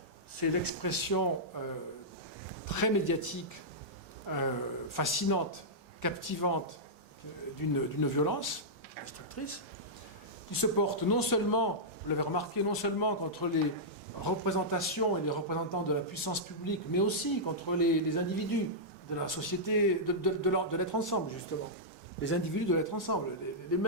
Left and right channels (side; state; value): both; normal; correlation -0.11